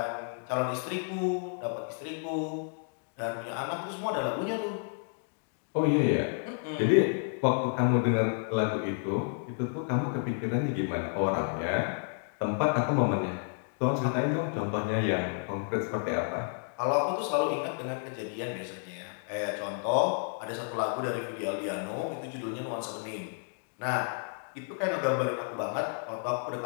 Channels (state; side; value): silent; right; 57 dB below the other